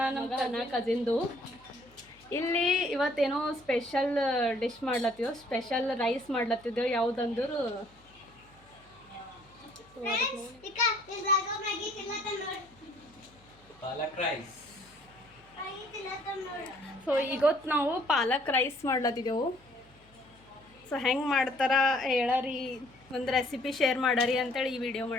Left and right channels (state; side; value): noise; left; hum, 28 dB below the sound